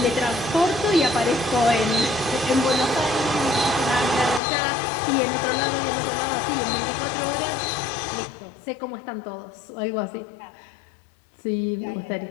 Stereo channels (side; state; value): right; drops out; at 4.4 s